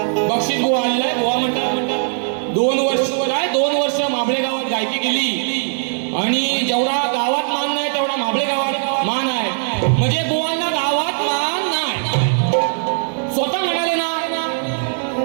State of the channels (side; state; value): left; silent; digital silence